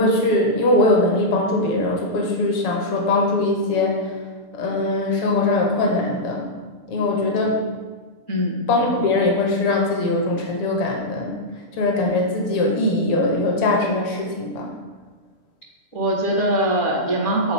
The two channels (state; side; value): late; right; 6.8 ms